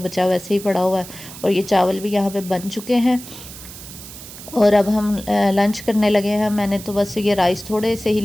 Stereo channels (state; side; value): noise; right; hiss, 15 dB below the sound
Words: वैसे ही पड़ा हुआ है, और ये चावल भी यहाँ पे बन चुके हैं। और अब हम लंच करने लगे हैं। मैंने तो बस ये राइस थोड़े से ही